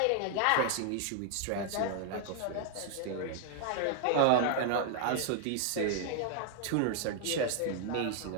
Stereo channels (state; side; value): different; both; correlation 0.00